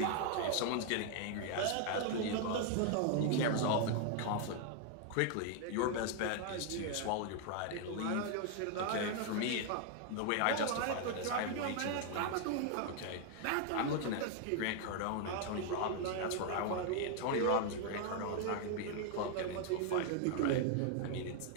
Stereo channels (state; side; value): different; both; correlation 0.00